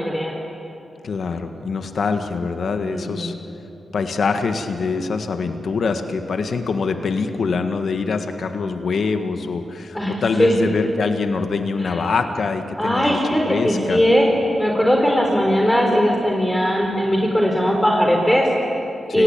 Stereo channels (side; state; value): both; normal; correlation 0.91